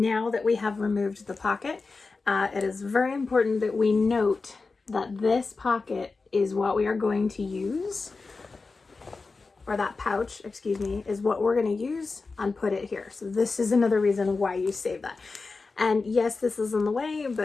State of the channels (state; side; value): quieter; right; 4.1 dB